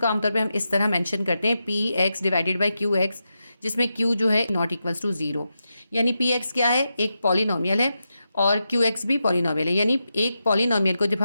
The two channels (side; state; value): both; inverted; correlation -0.88